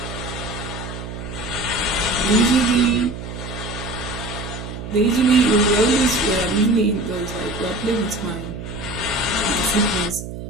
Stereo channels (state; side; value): noise; right; hum, 9 dB below the sound